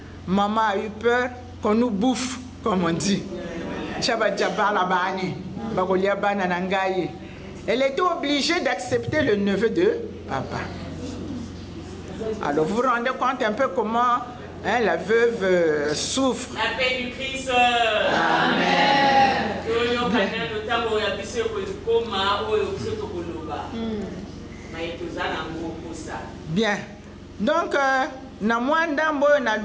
Maman a eu peur qu'on nous bouffe, comme on dit. Elle était obligée d'accepter le neveu de papa. Alors vous vous rendez compte un peu comment la veuve souffre. La paix du Christ. Amen. Bien. Donc, na mwanda mboyo na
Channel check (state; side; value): identical; both; correlation 1.00